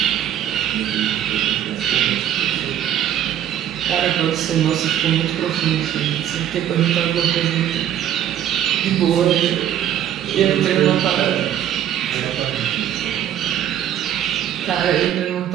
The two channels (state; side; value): quieter; left; 10.7 dB